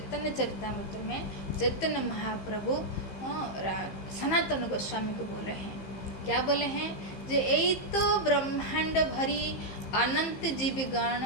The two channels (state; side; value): late; right; 15 ms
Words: चरितामृत में चैतन्य महाप्रभु सनातन गोस्वामी को बोले हैं। क्या बोले हैं? जो यही तो ब्रह्मांड भरी अनंत जीवगण